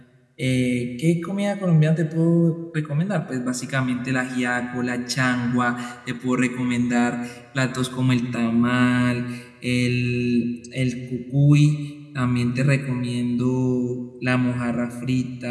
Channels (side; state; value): both; identical; correlation 1.00